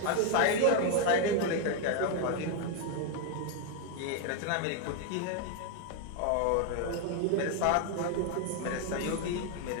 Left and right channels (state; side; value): different; both; correlation 0.01